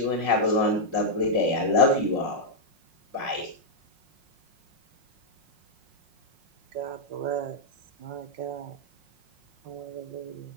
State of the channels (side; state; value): left; late; 5.5 ms